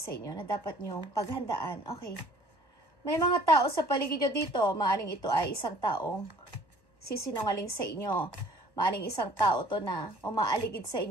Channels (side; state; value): right; late; 1.1 ms